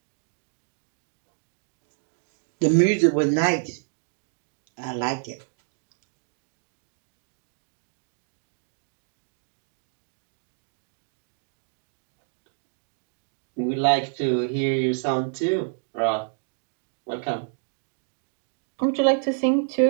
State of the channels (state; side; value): silent; left; digital silence